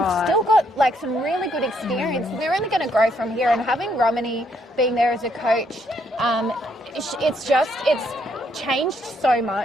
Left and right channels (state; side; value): normal; both; correlation 0.72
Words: still got, like, some really good experience. They're only going to grow from here. And having Romany being there as a coach, it's changed so